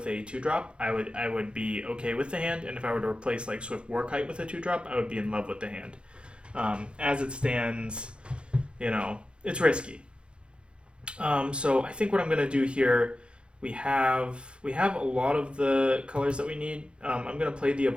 a 2-drop, I would be okay with the hand, and if I were to replace like Swift Warkite with a 2-drop, I would be in love with the hand. As it stands, it's risky. So I think what I'm gonna do here, we have a lot of the colors that we need. I'm gonna play the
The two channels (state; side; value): late; left; 0.056 ms